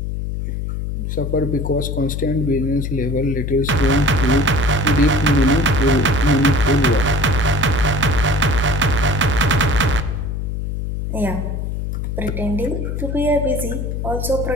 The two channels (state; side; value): noise; left; hum, 3 dB below the sound